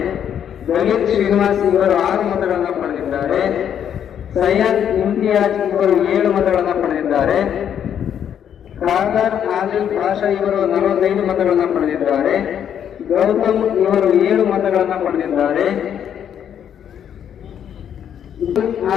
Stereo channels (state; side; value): quieter; right; 9.1 dB